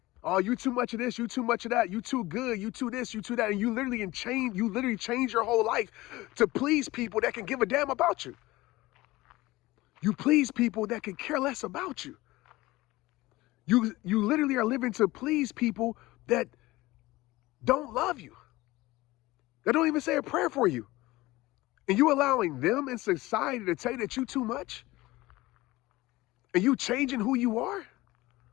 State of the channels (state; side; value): quieter; right; 19.2 dB